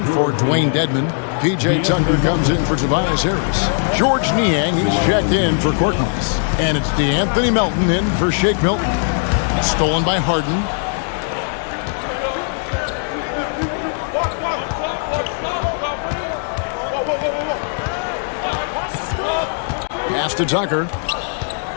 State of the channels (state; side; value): silent; right; 62 dB below the other